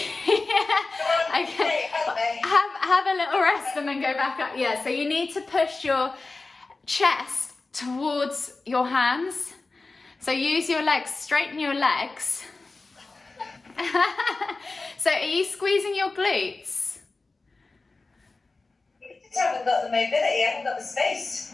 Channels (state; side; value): quieter; right; 3.6 dB